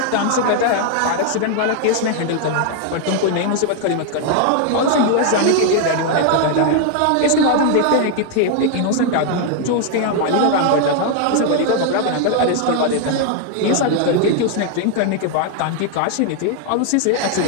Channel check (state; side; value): different; both; correlation 0.00